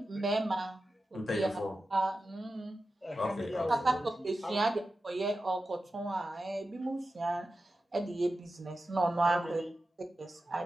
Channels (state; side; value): normal; both; correlation 0.92